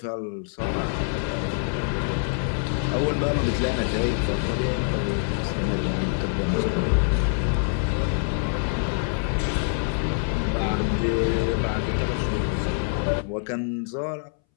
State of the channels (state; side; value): silent; right; 62 dB below the other